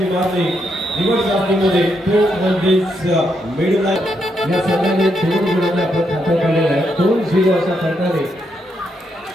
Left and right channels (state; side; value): normal; both; correlation 0.79